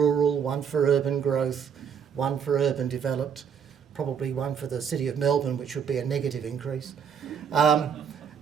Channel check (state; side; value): quieter; left; 7.4 dB